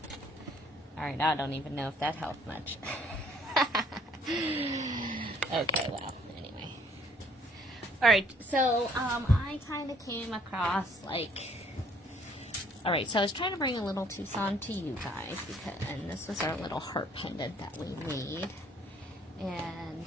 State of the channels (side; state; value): both; normal; correlation 0.61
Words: All right, I don't even know if that helped much. Okay, well, anyway. All right, so I kind of came across, like... All right, so I was trying to bring a little Tucson to you guys, and this was our little heart pendant that we made. And